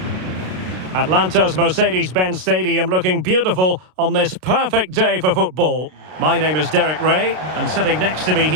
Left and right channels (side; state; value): left; late; 32 ms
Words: Atlanta's Mercedes-Benz Stadium looking beautiful on this perfect day for football. My name is Derek Ray, and sitting next to me